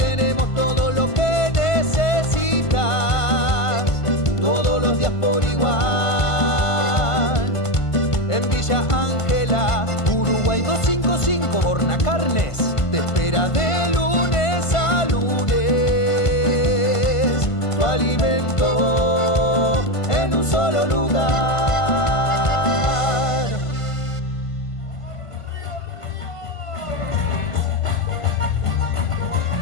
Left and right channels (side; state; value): right; late; 1.5 ms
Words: todo lo que necesitas, todos los días por igual. En Villa Ángela, Uruguay 255, Bonacarnes te espera de lunes a lunes. Tu alimento en un solo lugar.